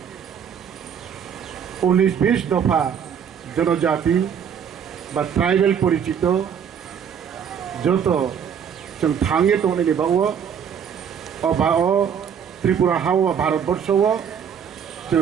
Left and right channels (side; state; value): left; quieter; 7.8 dB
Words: 19-20 दफा जनजाति बा ट्राइबल परिचित जो जों थांगे तो त्रिपुरा हाव भारतवर्ष जो